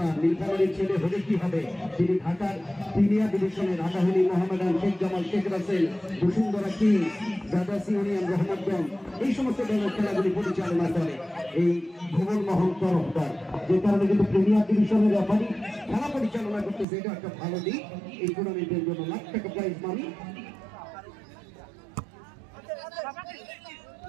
নীলফামারীর ছেলে হলে কি হবে, তিনি ঢাকার প্রিমিয়ার ডিভিশনের আবাহনী, মোহামেডান, শেখ জামাল, শেখ রাসেল, বসুন্ধরা কিং, দাদাসি ইউনিয়ন, রহমতগঞ্জ, এই সমস্ত দলের খেলাগুলি পরিচালনা করে এই ভুবন মোহন তরফদার। যে কারণে কিন্তু প্রিমিয়ার ডিভিশনের রেফারি খেলা পরিচালনা করতেছে, এটা একটা ভালো দিক। এই টুর্নামেন্টের জন্য লাখ টাকা প্রাইজ মানি।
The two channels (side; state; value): left; drops out; at 16.9 s